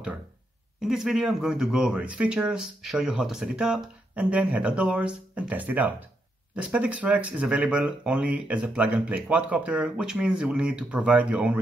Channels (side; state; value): both; normal; correlation 0.80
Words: In this video I'm going to go over its features, show you how to set it up, and then head outdoors and test it out. The Spedix Rex is available only as a plug-and-play quadcopter, which means you will need to provide your own